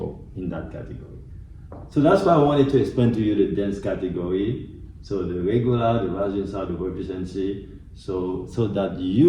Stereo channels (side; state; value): both; identical; correlation 1.00